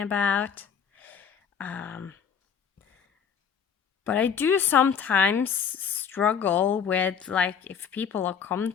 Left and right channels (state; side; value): quieter; right; 7.2 dB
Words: But I do sometimes struggle with, like, if people are